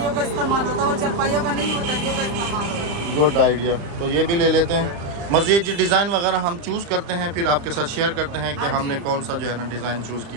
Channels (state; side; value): late; left; 35 ms